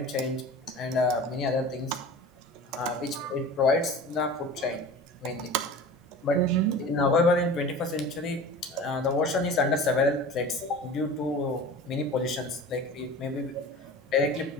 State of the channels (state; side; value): normal; both; correlation 0.37